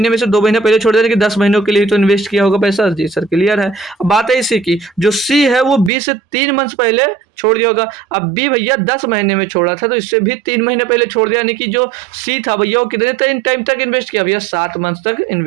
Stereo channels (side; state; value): left; drops out; at 5.9 s